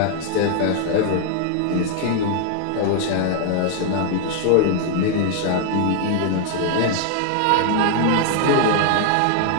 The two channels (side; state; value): both; different; correlation 0.00